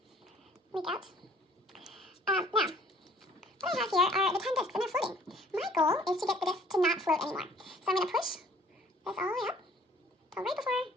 leak out. Now, what I have here are the 10 discs, and they're floating. My goal is to get the discs to not float anymore. So I'm going to push this all the way up, till right before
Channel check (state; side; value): normal; both; correlation 0.56